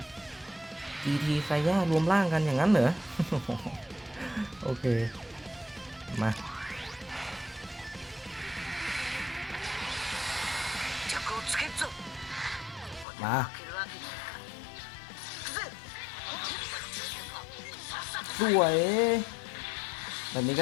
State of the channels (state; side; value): drops out; right; at 13.1 s